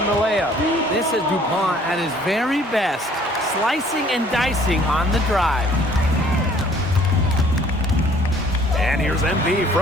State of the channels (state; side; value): normal; both; correlation 0.57